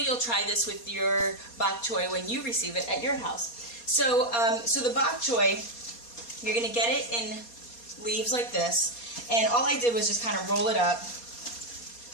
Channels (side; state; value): right; late; 4.2 ms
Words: you'll try this with your bok choy when you receive it at your house. So, the bok choy, you're going to get it in leaves like this, and all I did was just kind of roll it up.